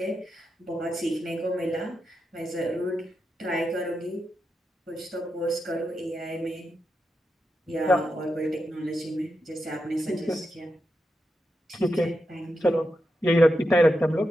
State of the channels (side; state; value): both; normal; correlation 0.87